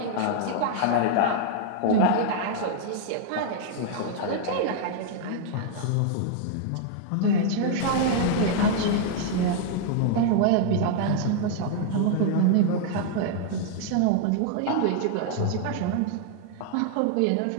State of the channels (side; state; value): both; different; correlation -0.01